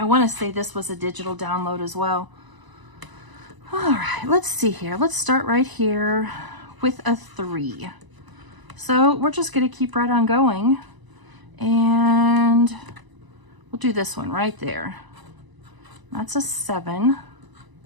want to say this was a digital download as well. All right, let's see here. Let's start right here with a 3. So we're just going to keep right on going, and we'll do this one right there. That's a 7.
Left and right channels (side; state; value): left; late; 1.0 ms